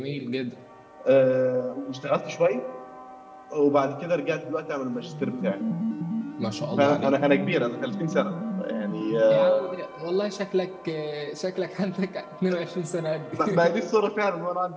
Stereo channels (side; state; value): both; identical; correlation 1.00